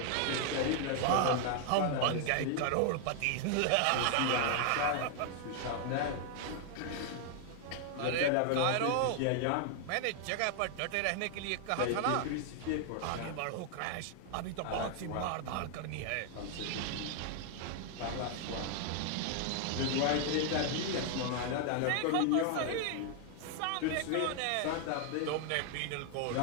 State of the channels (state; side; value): different; both; correlation 0.00